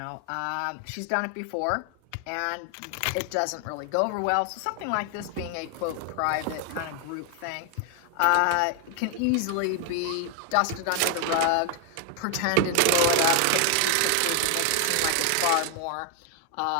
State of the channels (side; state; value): both; different; correlation 0.00